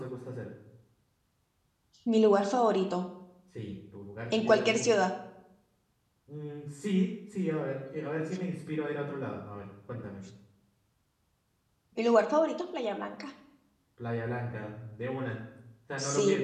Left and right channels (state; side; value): identical; both; correlation 1.00